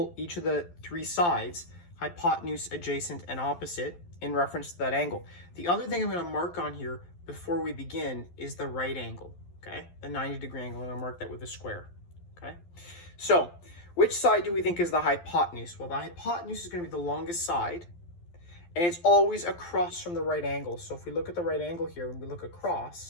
each of the three sides, hypotenuse, adjacent, and opposite, in reference to that angle. The other thing I'm going to mark on here before we begin is the right angle. Okay, the 90-degree angle, and I'll mark that with a square. Okay, so which side do we think is the hypotenuse? Well, the hypotenuse is going to be the longest side, and it's always across from the right angle. So if we look at the right angle here and we look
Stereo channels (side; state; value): right; late; 12 ms